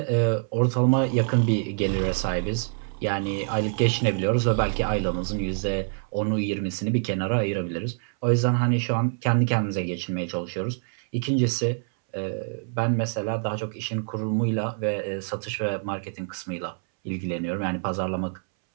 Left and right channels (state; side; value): silent; left; 61 dB below the other